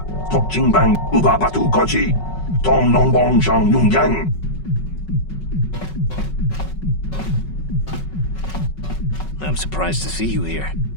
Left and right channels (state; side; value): late; right; 5.4 ms